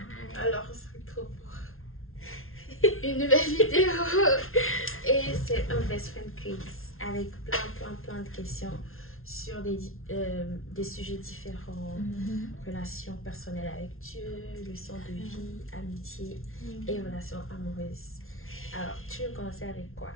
Alors, on se retrouve pour une nouvelle vidéo et c'est un best friend quiz avec plein de questions sur des sujets différents, relations personnelles avec Dieu, leçons de vie, amitié et relations amoureuses. Alors, tu veux commencer avec quoi?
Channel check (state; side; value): late; right; 0.61 ms